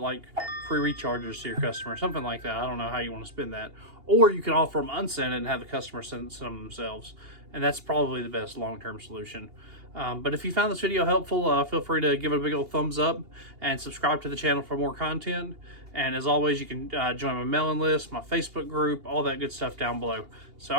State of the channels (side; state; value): left; late; 2.8 ms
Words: free recharges to your customer, something like that. I don't know how you want to spend that. Or you can offer them unscented and have the customer send some themselves. And that's probably the best long-term solution. But if you found this video helpful, feel free to give it a big old thumbs up and subscribe to the channel for more content. And as always, you can join my mailing list, my Facebook group, all that good stuff down below. So,